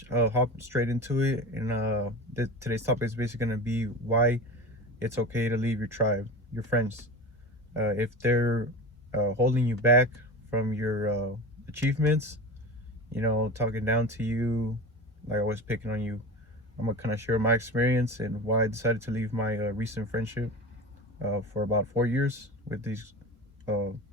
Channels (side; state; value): both; normal; correlation 0.29